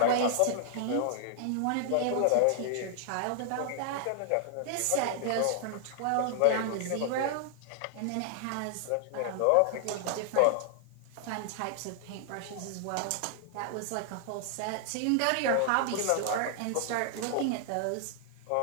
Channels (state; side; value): different; both; correlation 0.00